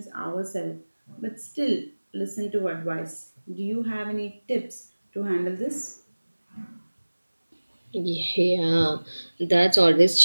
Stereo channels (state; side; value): inverted; both; correlation -1.00